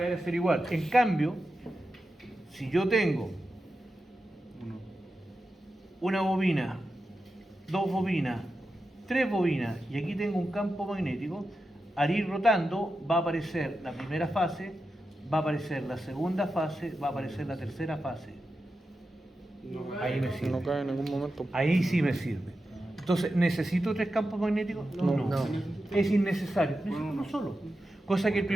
a ser igual. En cambio, si yo tengo Uno. una bobina, 2 bobinas, 3 bobinas y aquí tengo un campo magnético, al ir rotando va a aparecer la primera fase, va a aparecer la segunda fase, va a aparecer la tercera fase. Ahí me sirve. No cae en ningún momento. Ahí sí me sirve. Entonces, ¿necesito 3 campos magnéticos? No. Es innecesario. Necesito uno solo. Cosa que el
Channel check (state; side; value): normal; both; correlation 0.90